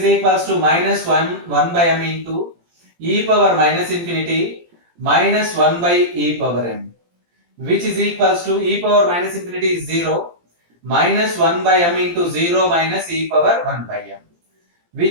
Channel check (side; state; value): left; late; 17 ms